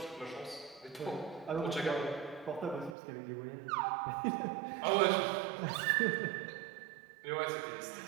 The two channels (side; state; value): left; drops out; at 3.0 s